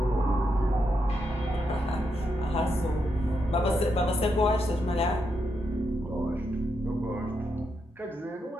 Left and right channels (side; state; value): both; normal; correlation 0.82